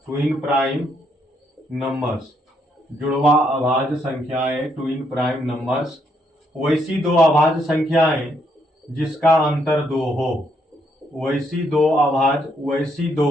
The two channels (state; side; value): normal; both; correlation 0.74